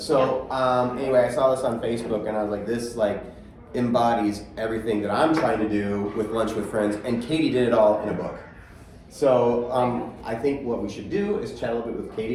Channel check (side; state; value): both; identical; correlation 1.00